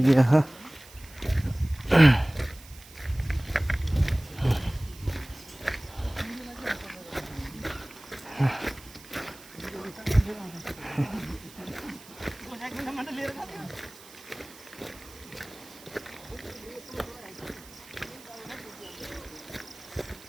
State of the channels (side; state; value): right; noise; hiss, 20 dB below the sound